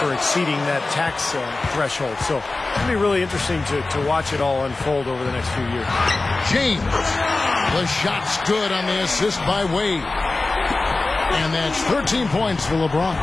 exceeding that tax threshold. So it'll be really interesting to watch it all unfold over the next few years. James, the shot's good on the assist by Wade. And that's 13 points for LeBron.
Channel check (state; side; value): quieter; right; 3.3 dB